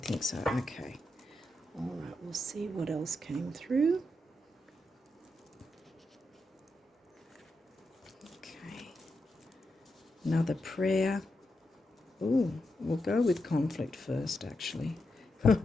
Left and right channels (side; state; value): both; normal; correlation 0.86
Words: think so. Okay. All right, we'll see what else came through. Okay. Another prayer. Ooh, we'll go with conflict first, actually.